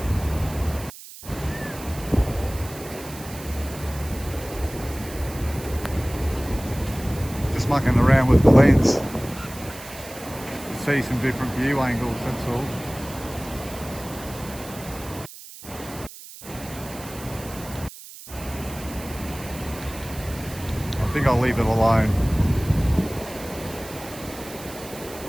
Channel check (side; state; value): right; noise; hiss, 15 dB below the sound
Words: Mucking around with the lens to see some different view angles, that's all. I think I'll leave it alone.